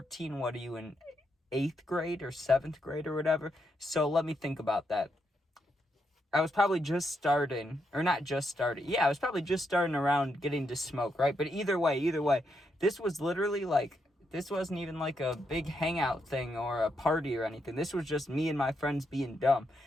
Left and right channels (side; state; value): both; normal; correlation 0.80